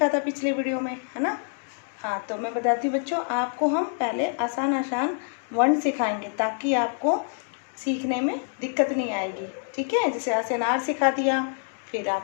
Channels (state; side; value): silent; right; 58 dB below the other